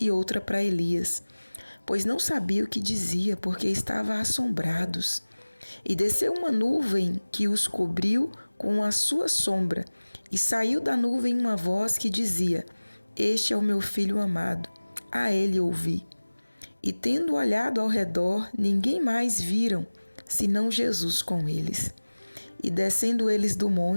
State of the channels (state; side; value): inverted; both; correlation -1.00